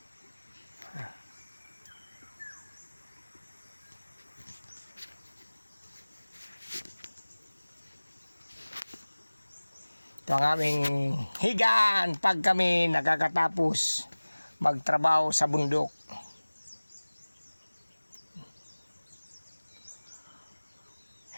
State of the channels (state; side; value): inverted; both; correlation -1.00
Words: Ito ang aming higaan pag kami nakakatapos magtrabaho sa bundok.